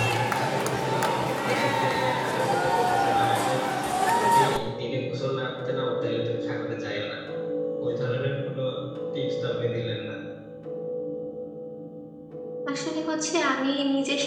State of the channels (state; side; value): identical; both; correlation 1.00